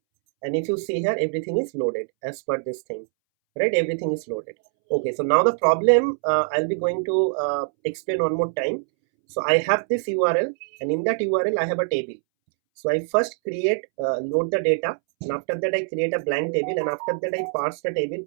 and if you see here, everything is loaded as per this thing, right? Everything is loaded. Okay, so now the problem, I'll be going to explain one more time. So I have this URL, and in that URL I have a table. So I first create, load the data, and after that I create a blank table, and after that I parse the table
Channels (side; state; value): left; silent; 63 dB below the other